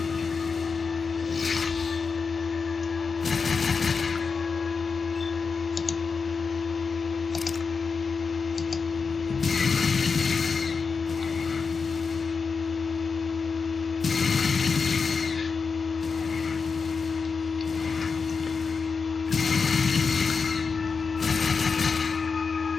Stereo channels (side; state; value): right; quieter; 5.1 dB